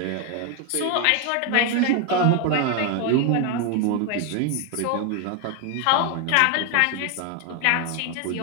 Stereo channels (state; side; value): different; both; correlation 0.01